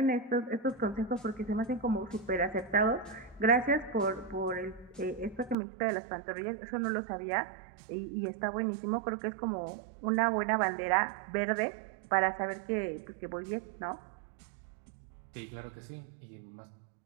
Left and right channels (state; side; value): drops out; left; at 5.6 s